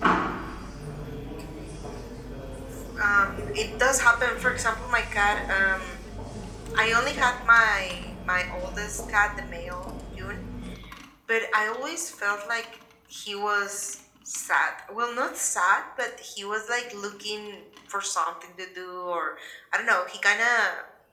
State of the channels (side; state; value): both; identical; correlation 1.00